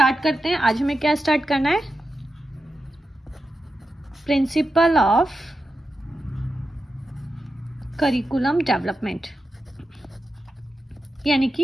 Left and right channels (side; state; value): both; normal; correlation 0.90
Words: करते हैं। आज हमें क्या स्टार्ट करना है? प्रिंसिपल ऑफ करिकुलम डेवलपमेंट, यानी